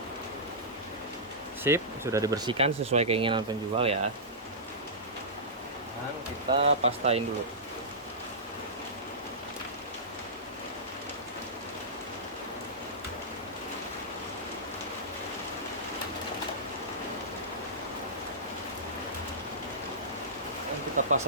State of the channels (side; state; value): both; normal; correlation -0.16